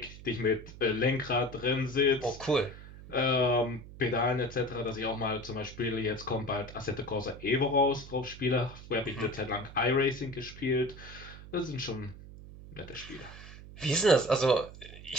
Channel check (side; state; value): right; noise; hum, 15 dB below the sound